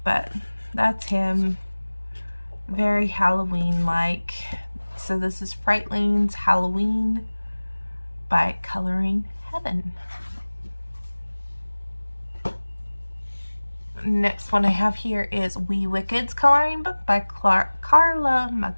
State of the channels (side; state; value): both; inverted; correlation -1.00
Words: but that's him. Very Halloween-like. So this is Frightlings Halloween by Coloring Heaven. Next one I have here is Wee Wicked's coloring book by Carla